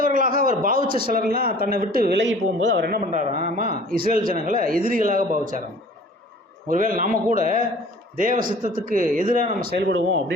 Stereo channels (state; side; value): normal; both; correlation 0.48